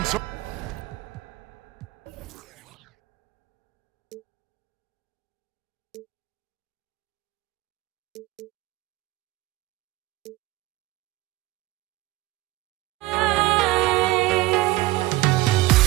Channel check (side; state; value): left; quieter; 18.3 dB